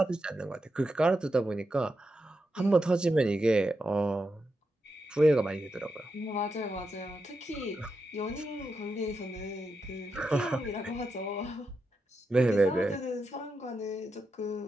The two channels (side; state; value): both; normal; correlation 0.86